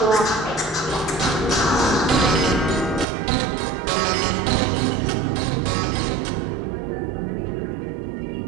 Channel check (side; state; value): left; drops out; at 3.1 s